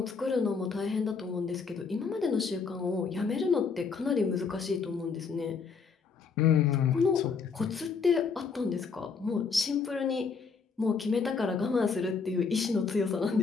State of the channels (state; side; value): quieter; right; 5.3 dB